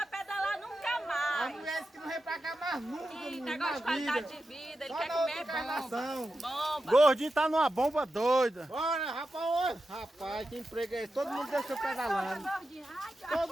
pedalar nunca A mais. mulher disse que não vem pra cá mais nunca, Que menino, negócio de na qualidade vida. de vida, ele Só quer na comer outra bomba. encarnação. Bomba. Gordinho tá numa bomba doida. Bora, rapaz, rapaz, que emprego é esse? Todo mundo desceu pedalando.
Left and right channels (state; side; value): normal; both; correlation 0.90